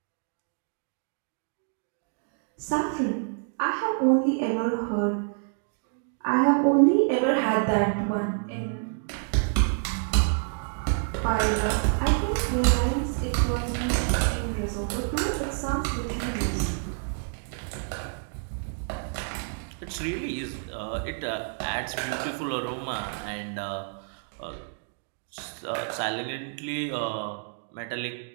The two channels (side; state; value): left; silent; 59 dB below the other